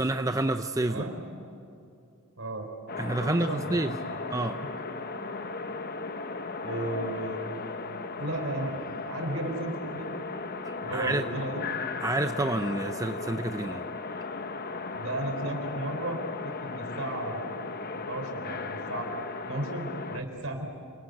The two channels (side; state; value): both; normal; correlation 0.32